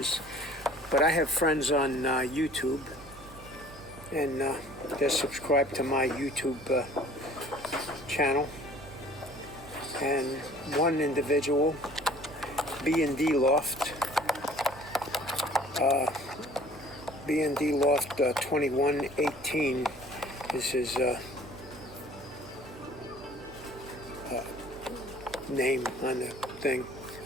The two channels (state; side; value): noise; right; hum, 20 dB below the sound